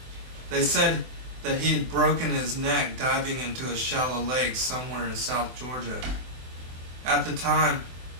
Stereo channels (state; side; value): late; left; 24 ms